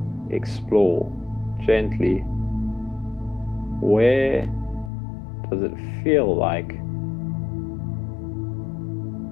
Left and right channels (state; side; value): drops out; right; at 4.9 s